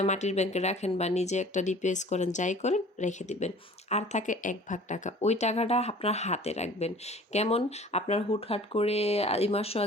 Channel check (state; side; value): normal; both; correlation 0.47